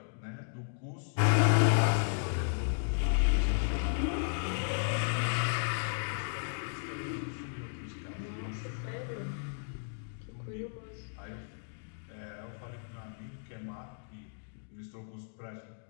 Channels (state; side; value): silent; right; digital silence